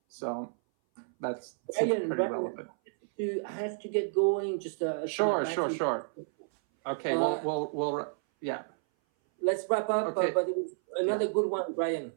So that's pretty relevant. You have to get going. Just sure. Okay, we'll yeah. Let's wrap up. Okay. But it was another good one, Brian.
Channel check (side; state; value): left; silent; 57 dB below the other